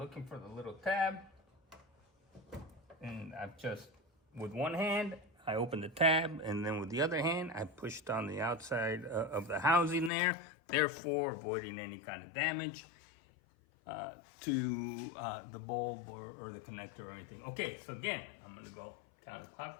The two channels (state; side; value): drops out; right; at 10.1 s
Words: for the little tab. And I've just, with one hand, I opened the tab, and then with the other hand, I pushed on the outside of the housing there, therefore avoiding any kind of damage to the bulb or the connector or anything. Okay, so again, I'm gonna go